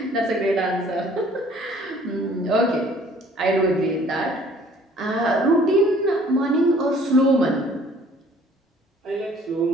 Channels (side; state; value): both; normal; correlation 0.55